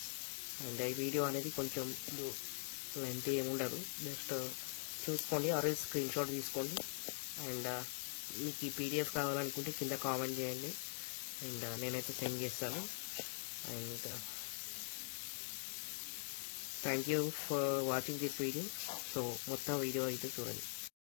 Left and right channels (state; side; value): silent; right; digital silence